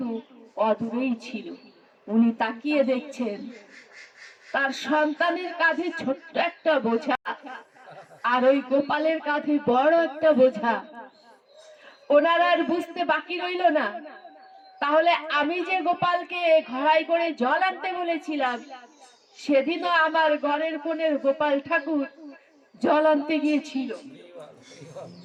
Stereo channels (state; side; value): identical; both; correlation 1.00